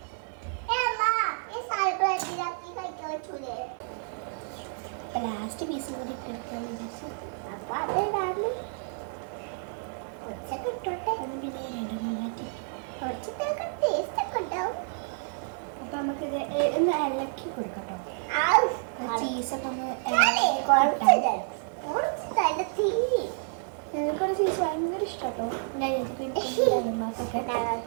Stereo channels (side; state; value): left; silent; 58 dB below the other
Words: പറ്റൂലേ? ലാസ്റ്റ് പീസ് കൂടി ഇട്ടെടുക്കാൻ വിചാരിച്ചു. അപ്പൊ അതുണ്ടാവില്ല കുറച്ചൊക്കെ ഇട്ടോട്ടെ. പിന്നെ രണ്ടെണ്ണം മാറ്റി. കുറച്ചൊക്കെ ടേസ്റ്റ് ഒക്കെ ഉണ്ടാവും. അപ്പൊ നമുക്കിത് ഒന്ന് ഇളക്കി കൊടുക്കട്ടോ. ചീസൊക്കെ ഒന്ന് ഞങ്ങൾക്കൊരു ചീസ് ഭയങ്കര ഇഷ്ടാട്ടോ.